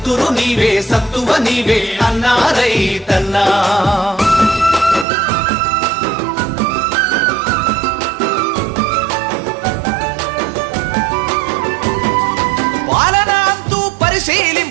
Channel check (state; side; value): drops out; left; at 5.1 s